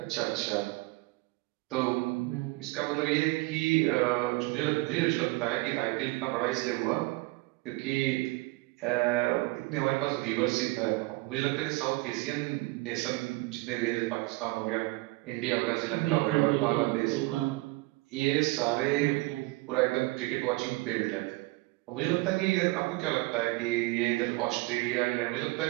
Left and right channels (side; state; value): left; quieter; 22.9 dB